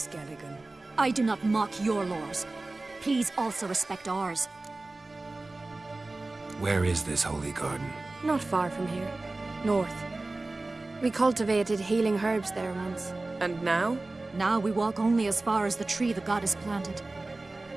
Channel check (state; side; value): quieter; left; 3.1 dB